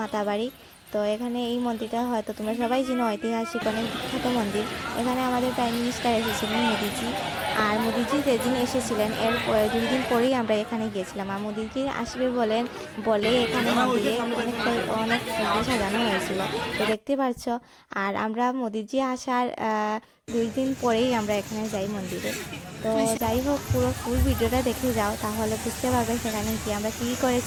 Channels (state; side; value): identical; both; correlation 1.00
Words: মাতাবাড়ি। তো এখানে এই মন্দিরটা হয়তো তোমরা সবাই জানো, ঐতিহাসিক অনেক বিখ্যাত মন্দির। এখানে আমাদের প্রাইম মিনিস্টার এসেছিলেন মোদিজি। আর মোদিজি যেদিন এসেছিলেন এর 2 দিন পরেই আমরা এখানে গিয়েছিলাম। আর মোদিজি আসবে বলে এখানে মন্দিরে অনেক ফুল সাজানো হয়েছিল, তো দেখতে পাচ্ছ। আর আমরা মোদিজি আসার 2 দিন পরেই আমরা এখানে যাই মন্দিরে। তো যাই হোক, পুরো ফুল ভিডিওটা দেখে যাও, তাহলে বুঝতে পারবে সেখানে কি আমরা কী